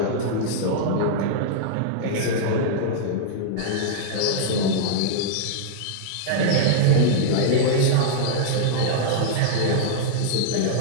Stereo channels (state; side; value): different; both; correlation -0.01